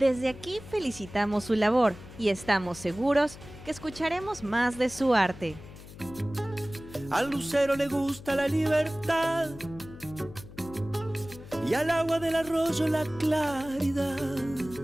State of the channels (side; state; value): left; noise; hum, 17 dB below the sound